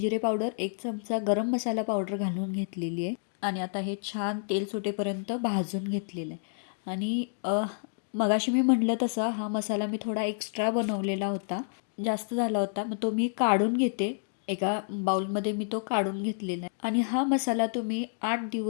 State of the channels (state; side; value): silent; right; digital silence